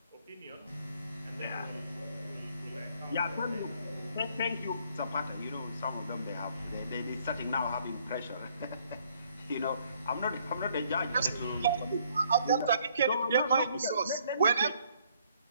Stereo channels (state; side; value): inverted; both; correlation -0.65